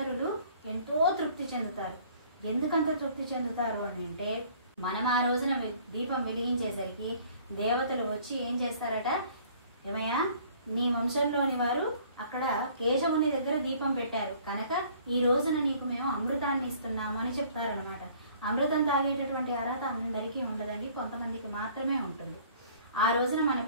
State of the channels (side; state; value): both; inverted; correlation -0.55